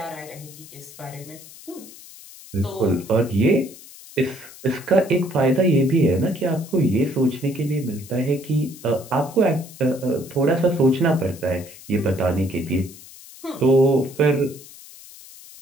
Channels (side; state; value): left; noise; hiss, 19 dB below the sound